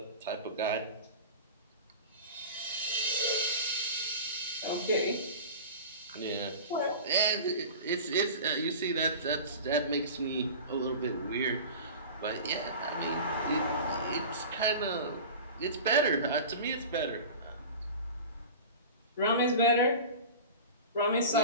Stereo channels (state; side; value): inverted; both; correlation -0.34